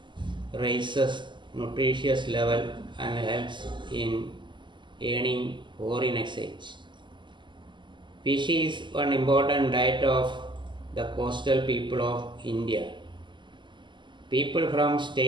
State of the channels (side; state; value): left; late; 0.23 ms